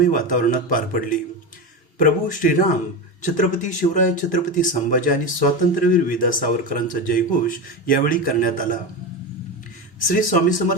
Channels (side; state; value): both; normal; correlation 0.19